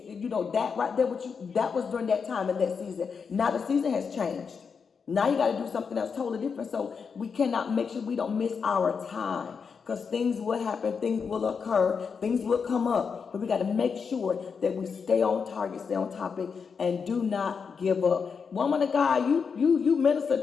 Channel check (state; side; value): quieter; right; 5.9 dB